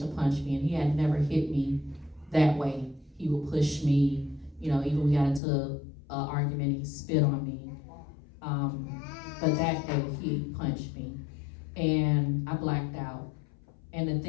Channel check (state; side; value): drops out; right; at 5.4 s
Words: punch me. And he had never hit me that way. He would push me, you know, even we got into an argument, he spit on me. But that day he punched me and I blacked out. And the